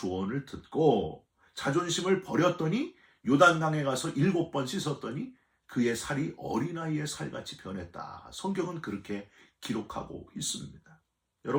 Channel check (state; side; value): identical; both; correlation 1.00